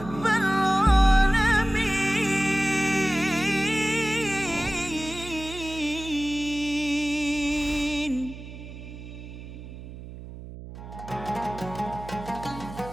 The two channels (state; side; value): noise; right; hum, 13 dB below the sound